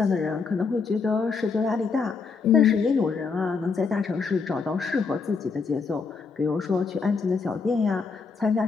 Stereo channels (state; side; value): quieter; right; 4.9 dB